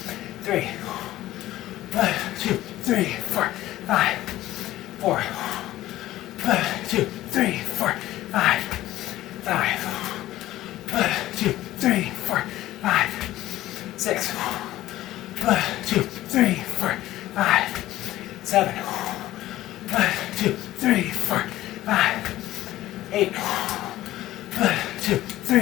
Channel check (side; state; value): right; quieter; 15.3 dB